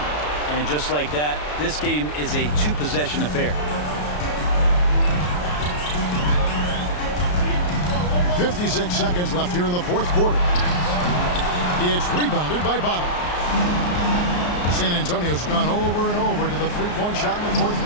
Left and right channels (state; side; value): late; right; 34 ms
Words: And just like that, this game is a 2-possession affair. 56 seconds left here in the fourth quarter. It's rebounded by Bottom. San Antonio's gone over and over to the 3-point shot in the fourth